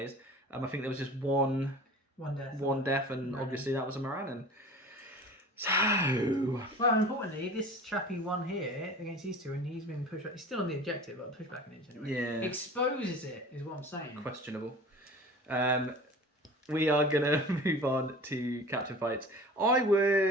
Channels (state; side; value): normal; both; correlation 0.40